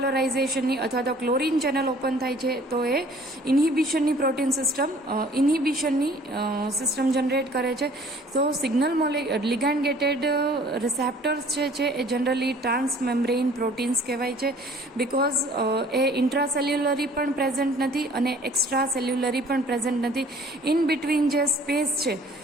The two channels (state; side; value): normal; both; correlation 0.53